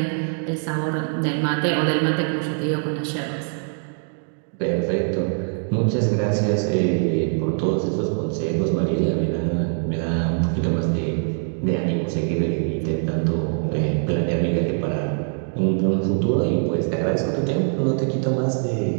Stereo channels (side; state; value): left; silent; 63 dB below the other